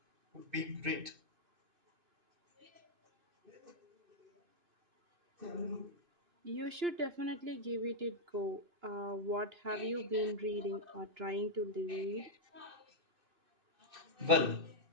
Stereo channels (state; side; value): late; left; 2.6 ms